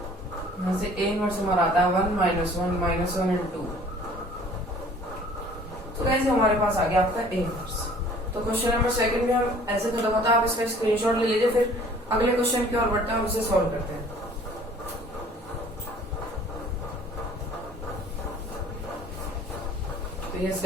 यहाँ से A इनवर्स हमारा आता है 1 - 1 एंड 2। तो गाइस हमारे पास आ गया आपका A इनवर्स। तो क्वेश्चन नंबर 2 में हम ऐसे खत्म होता है, आप इसका स्क्रीनशॉट ले लीजिए, फिर अगले क्वेश्चन की ओर बढ़ते हैं, हम उसे सॉल्व करते हैं। तो यस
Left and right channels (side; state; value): both; normal; correlation 0.52